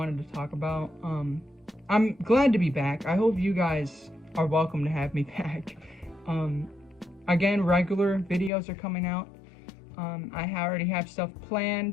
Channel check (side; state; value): right; drops out; at 8.5 s